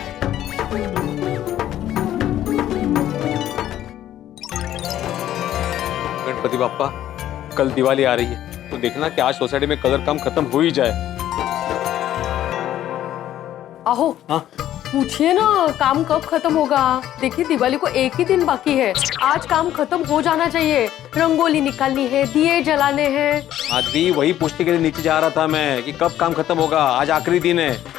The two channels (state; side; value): quieter; right; 12.3 dB